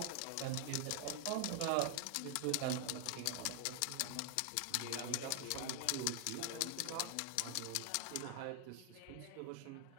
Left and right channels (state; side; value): different; both; correlation 0.00